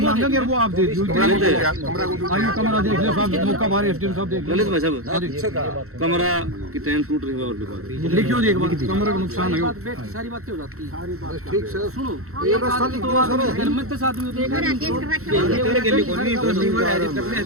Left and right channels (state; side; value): late; left; 0.63 ms